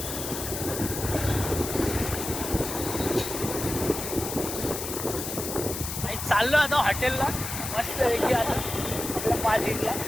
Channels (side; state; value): left; noise; hiss, 5 dB below the sound